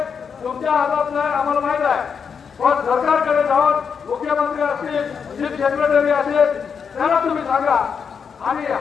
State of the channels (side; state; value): right; quieter; 6.4 dB